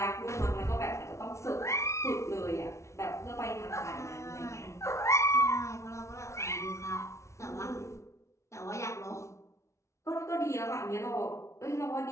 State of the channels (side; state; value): right; late; 0.14 ms